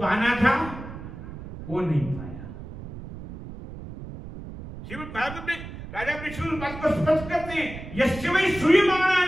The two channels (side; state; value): right; noise; rumble, 12 dB below the sound